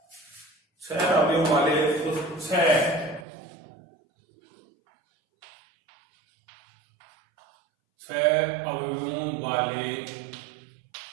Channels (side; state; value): left; drops out; at 3.2 s